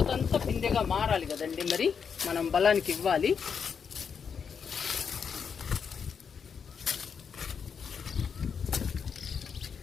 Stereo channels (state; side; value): quieter; right; 6.6 dB